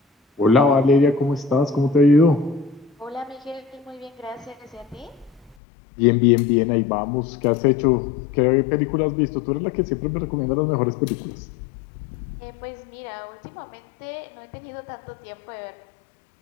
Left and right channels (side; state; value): right; drops out; at 5.6 s